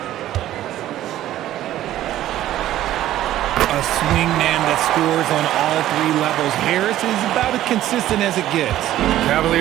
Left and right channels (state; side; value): quieter; left; 13.4 dB